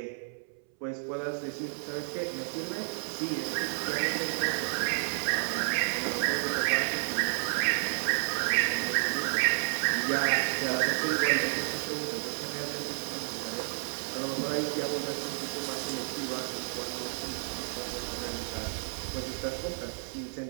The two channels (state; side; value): silent; left; 57 dB below the other